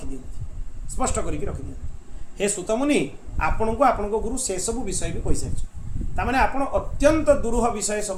दियंती स्पष्ट करके रखी दियंती। हे सुतमुनि आपण को गुरु से सब विषय भी कहि सारिछ तामाने आपण अत्यंत दुरूह विषय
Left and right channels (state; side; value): identical; both; correlation 1.00